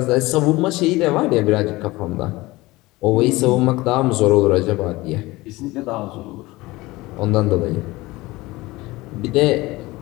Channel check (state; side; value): quieter; right; 20.3 dB